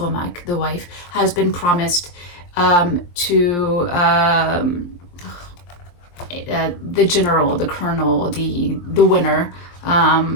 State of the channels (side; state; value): right; late; 23 ms